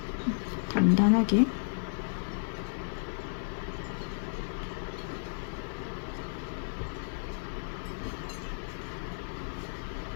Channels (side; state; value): right; silent; 56 dB below the other